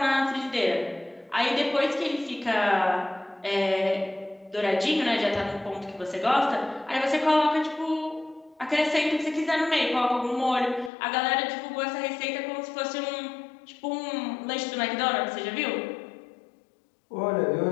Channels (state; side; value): drops out; right; at 10.9 s